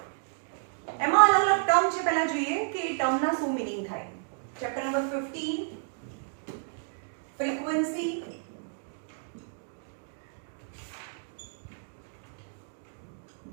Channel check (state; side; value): silent; left; digital silence